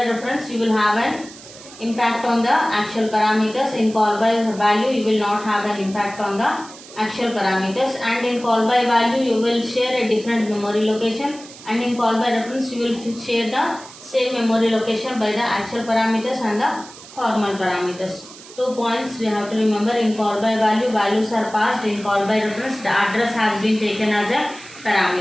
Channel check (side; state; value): right; noise; hiss, 18 dB below the sound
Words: reference, you will have an impact on the actual parameters. In call by value, you will not have an impact on the actual parameters. And in call by value, you will share a different memory location, and in call by reference, you will share the same memory location by the actual parameters and the formal parameters. 2 points we have to remember. In call by value, values are passed. In call by reference, the address has been taken as a